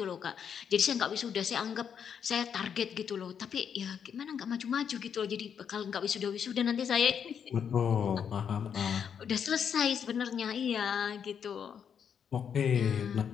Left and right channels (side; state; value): right; quieter; 7.7 dB